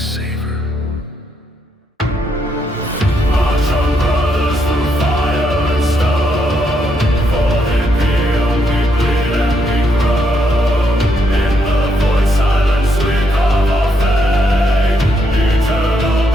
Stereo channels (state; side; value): normal; both; correlation 0.77